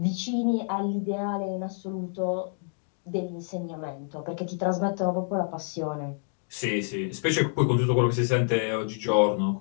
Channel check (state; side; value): silent; right; 60 dB below the other